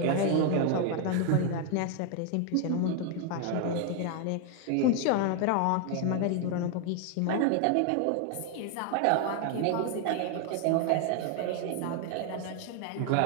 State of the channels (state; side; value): different; both; correlation 0.00